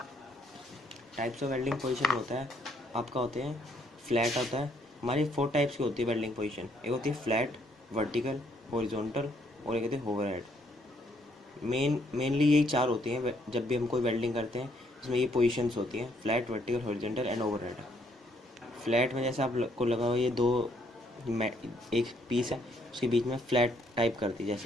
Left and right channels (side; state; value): both; normal; correlation 0.69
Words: Types of welding position होता है आपका, होते हैं फ्लैट होता है। हमारी 4 टाइप्स की होती है वेल्डिंग पोजीशन। एक होती है फ्लैट, वर्टिकल, हॉरिजॉन्टल और एक होती है ओवरहेड। मेनली यही 4 होती हैं जब भी हम कोई वेल्डिंग करते हैं, इसमें ये पोजीशंस होती हैं, flat, vertical, horizontal and overhead. Flat में जैसे आपको लगा हो ये दो एक पीस है, उसके बीच में फ्लैट टाइप कर दी,